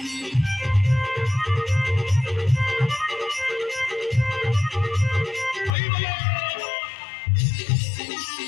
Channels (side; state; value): right; drops out; at 5.7 s